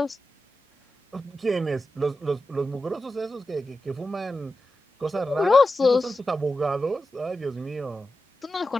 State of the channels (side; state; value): both; normal; correlation 0.91